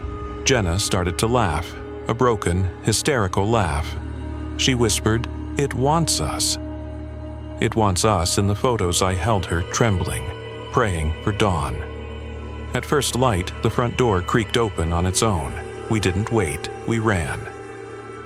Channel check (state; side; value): identical; both; correlation 1.00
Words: Jenna started to laugh, a broken, hysterical laugh. She whispered, "It wants us." It wants us in the photos I held her trembling, praying for dawn. At first light, the front door creaked open on its own. We didn't wait, we ran.